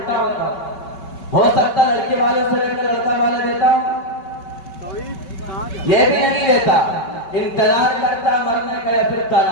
ہوتا ہو سکتا لڑکی والوں سے لے کر لڑکا والا دیتا ہوں، یہ بھی نہیں دیتا، انتظار کرتا مرنے کا یا پھر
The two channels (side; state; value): right; late; 5.3 ms